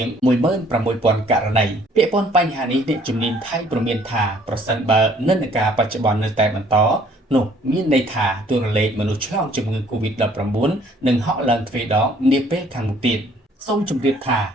ង 16,000 ករណីពាក់ព័ន្ធបញ្ហានេះអ្នកជំនាញថៃព្រមានថាប្រសិនបើនិន្នាការបច្ចុប្បន្ននៅតែបន្តនោះមានន័យថាតួលេខមនុស្សឆ្លងជំងឺ COVID-19 នឹងហក់ឡើងទ្វេដងនាពេលខាងមុខទៀតសូមជម្រាបថា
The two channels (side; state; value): both; normal; correlation 0.60